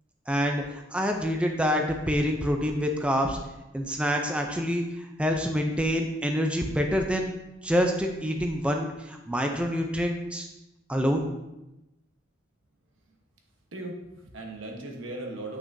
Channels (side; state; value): both; normal; correlation 0.73